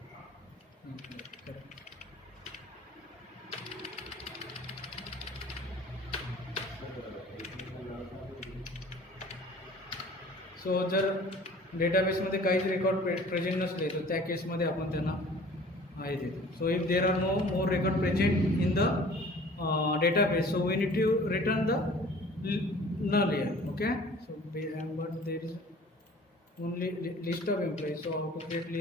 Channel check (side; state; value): both; normal; correlation 0.48